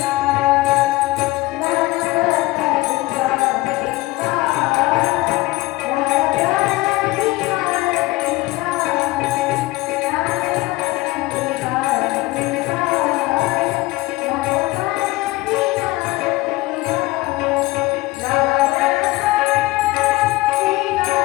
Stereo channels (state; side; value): quieter; right; 20.3 dB